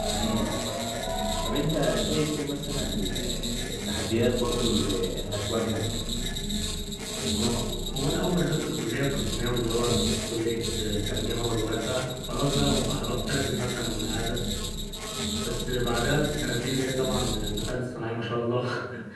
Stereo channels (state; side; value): identical; both; correlation 1.00